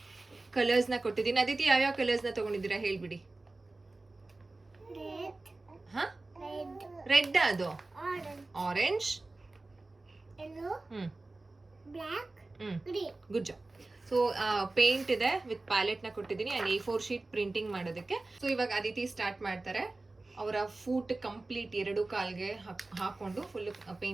ಕಲರ್ಸ್ನ ಕೊಟ್ಟಿದ್ದೀನಿ. ಅದಿತಿ ಯಾವ್ಯಾವ ಕಲರ್ಸ್ನ ತೊಗೊಂಡಿದ್ದೀರಾ ಹೇಳ್ಬಿಡಿ. ಹಾಂ, ರೆಡ್, ಅದು orange, good job. So paint ಇದೆ ವಿತ್ ಪ್ಯಾಲೆಟ್ನ ಕೊಟ್ಟಿದ್ದೀನಿ. ಆ್ಯಂಡ್ A4 ಶೀಟ್ ಪ್ರಿಂಟಿಂಗ್ ಮಾಡೋದಕ್ಕೆ. ಸೊ ಇವಾಗ ಅದಿತಿ ಸ್ಟಾರ್ಟ್ ಮಾಡ್ತಾರೆ. ಅವರ ಫೂಟ್ ಕಂಪ್ಲೀಟ್ 2 ಕಾಲ್ಗೆ ಹಾಕೊಂಡು ಫುಲ್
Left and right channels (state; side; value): quieter; left; 3.2 dB